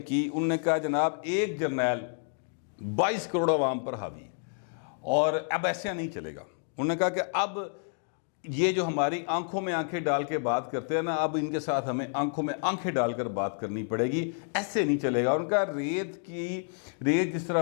کی، انہوں نے کہا جناب ایک جرنیل 22 کروڑ عوام پر حاوی ہے اور اب ایسے نہیں چلے گا۔ انہوں نے کہا کہ اب یہ جو ہماری آنکھوں میں آنکھیں ڈال کے بات کرتے ہیں نا، اب ان کے ساتھ ہمیں آنکھوں میں آنکھیں ڈال کر بات کرنی پڑے گی، ایسے نہیں چلے گا۔ ان کا ریت جس طرح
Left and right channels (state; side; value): silent; right; 58 dB below the other